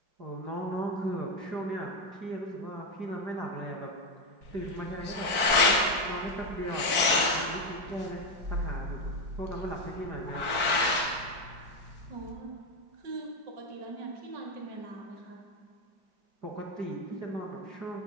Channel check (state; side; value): late; left; 4.6 ms